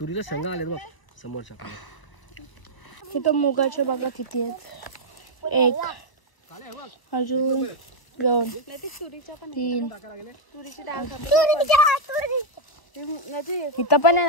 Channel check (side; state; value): right; late; 1.0 ms